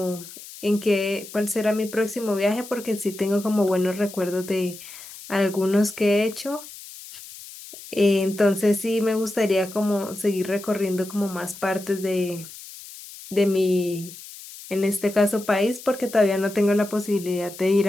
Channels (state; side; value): noise; left; hiss, 15 dB below the sound